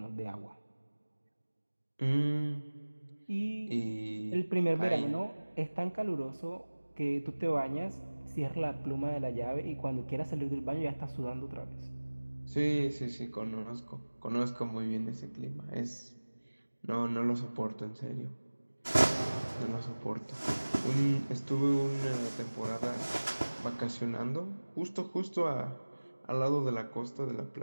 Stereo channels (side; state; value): both; inverted; correlation -1.00